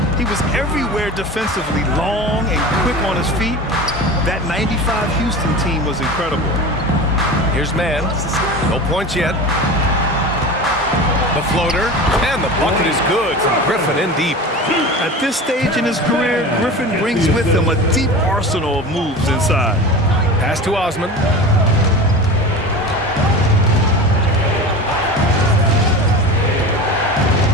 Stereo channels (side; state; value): both; normal; correlation 0.32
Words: He was everywhere defensively, long and quick on his feet. That 95 Houston team was incredible. Here's Mann. No points yet. The floater, and the bucket is good from Griffin in deep. At this stage in his career, Griffin brings with him a deep arsenal of moves inside. Pass to Osman.